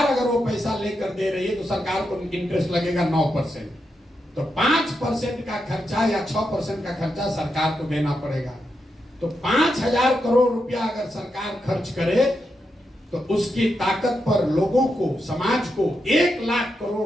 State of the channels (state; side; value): normal; both; correlation 0.85